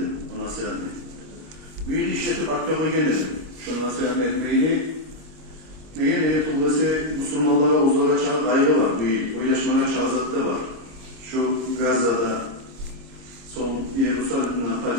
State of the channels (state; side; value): late; left; 26 ms